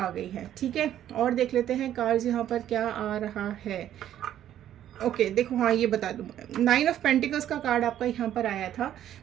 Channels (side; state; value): left; quieter; 11.4 dB